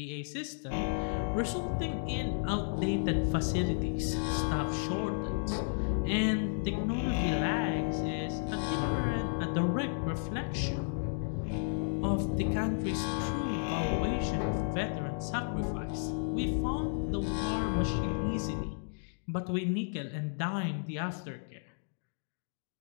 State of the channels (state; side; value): silent; right; digital silence